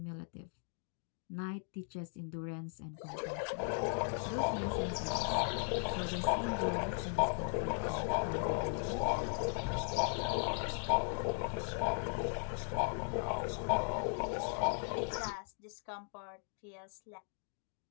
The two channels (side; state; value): right; silent; 53 dB below the other